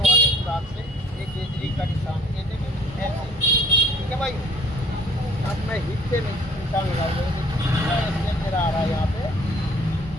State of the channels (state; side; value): normal; both; correlation 0.54